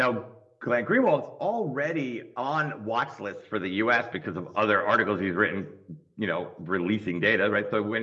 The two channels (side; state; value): both; identical; correlation 1.00